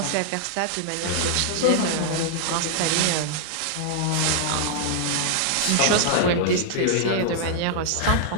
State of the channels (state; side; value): different; both; correlation -0.01